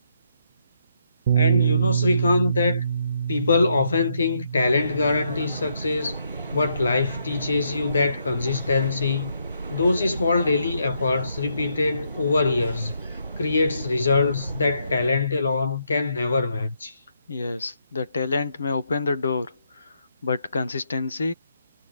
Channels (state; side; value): inverted; both; correlation -0.76